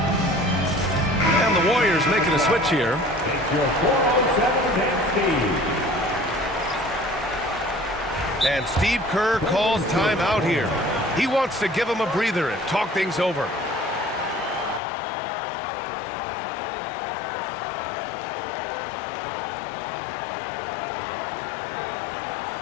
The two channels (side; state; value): right; drops out; at 14.8 s